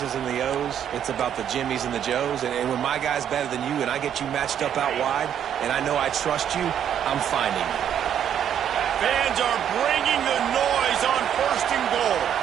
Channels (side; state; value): left; quieter; 9.4 dB